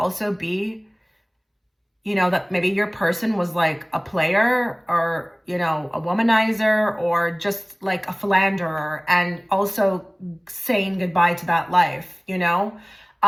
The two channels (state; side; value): identical; both; correlation 1.00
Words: be, you know, that maybe your person was like a player, or, you know, a womanizer, or just like a philanderer, and also saying goodbye to that life, you know,